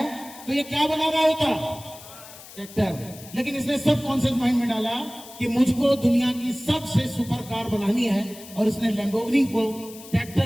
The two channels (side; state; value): left; noise; hiss, 17 dB below the sound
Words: तो ये क्या बना रहा होता? ट्रैक्टर। लेकिन इसने सबकॉन्शियस माइंड में डाला कि मुझको दुनिया की सबसे सुपर कार बनानी है, और इसने लैम्बोर्गिनी को